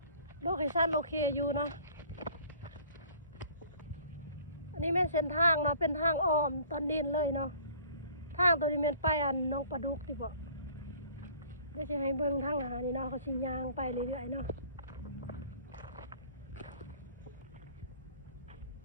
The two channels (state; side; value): inverted; both; correlation -0.50